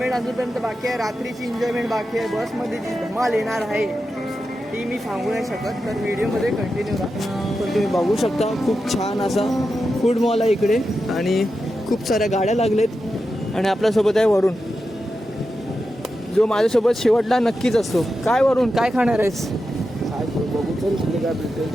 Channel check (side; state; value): both; normal; correlation 0.90